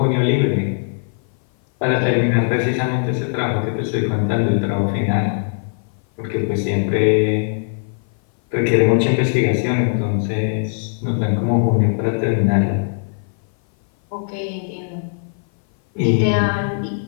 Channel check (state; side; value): silent; right; 57 dB below the other